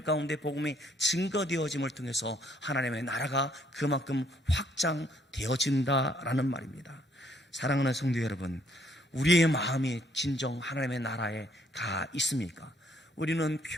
가운데 복음이 증거되어짐을 통해서 하나님의 나라가 그만큼 확장되어진다라는 말입니다. 사랑하는 성도 여러분, 우리의 마음이 진정 하나님의 나라에 가 있습니까? 우리는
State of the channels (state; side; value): normal; both; correlation 0.67